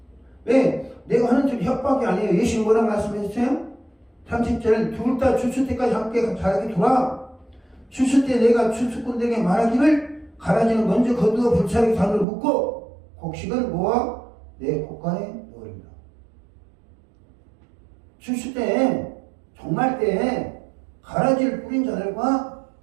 왜? 내가 하는 줄 협박이 아니에요. 예수님 뭐라고 말씀했어요? 30절 둘 다 추수 때까지 함께 자라게 두라. 추수 때 내가 추수꾼들에게 말하기를 가라지는 먼저 거두어 불사르게 단으로 묶고 곡식은 모아 내 곡간에 넣으리라. 추수 때 종말 때 가라지를 뿌린 자들과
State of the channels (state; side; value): drops out; left; at 12.2 s